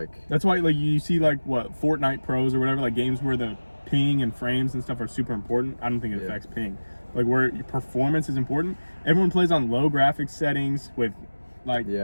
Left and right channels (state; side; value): inverted; both; correlation -1.00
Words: That's why like you see like what, Fortnite Pros or whatever, like games where the ping and frames and stuff are super important. I don't think it affects ping. Like where your performance is important. Everyone plays on low graphics settings with like